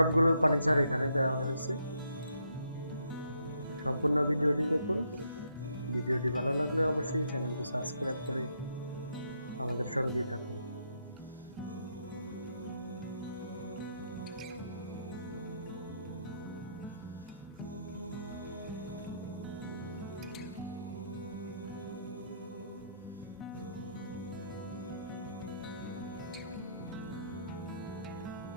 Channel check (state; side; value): inverted; both; correlation -0.74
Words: ফার্নিচার এখানে দেওয়া হয়েছে। সম্পূর্ণ ভিডিওটি দেখুন। ভিডিওটি ভালো লাগলে অবশ্যই চ্যানেলটি সাবস্ক্রাইব করে আমাদের সঙ্গেই থাকুন।